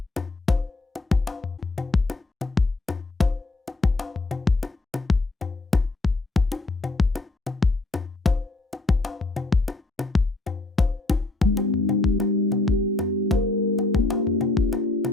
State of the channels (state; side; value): quieter; right; 3.0 dB